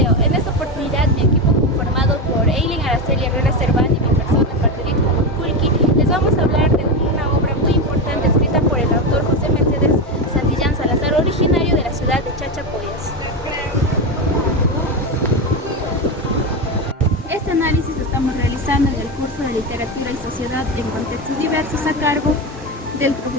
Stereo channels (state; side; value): normal; both; correlation 0.15